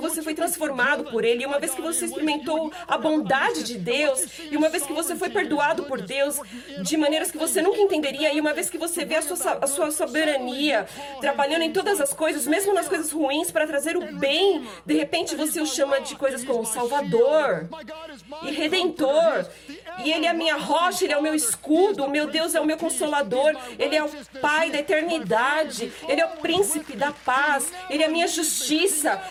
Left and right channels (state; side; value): identical; both; correlation 1.00